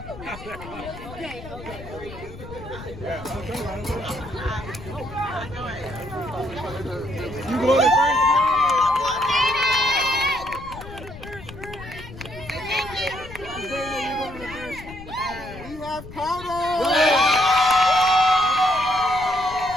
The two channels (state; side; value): noise; left; rumble, 14 dB below the sound